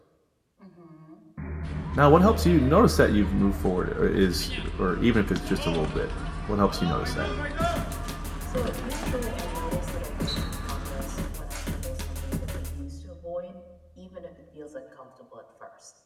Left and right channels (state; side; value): identical; both; correlation 1.00